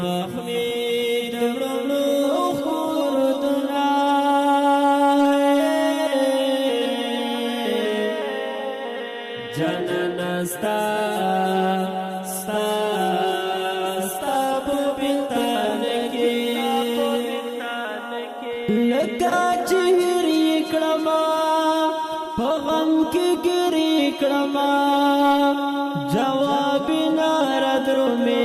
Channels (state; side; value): identical; both; correlation 1.00